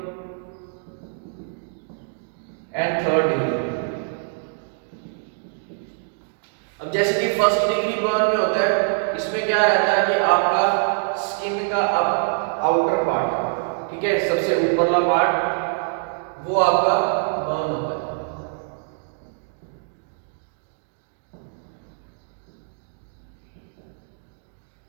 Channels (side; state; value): left; silent; 63 dB below the other